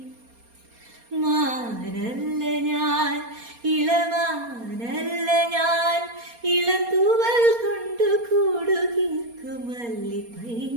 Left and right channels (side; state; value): left; late; 4.3 ms